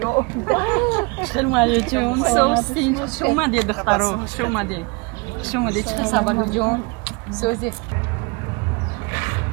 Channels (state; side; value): quieter; left; 29.6 dB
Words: خیلی مهیا جون سوستی شما دی دخترو شما دی چه خبر جون سوزی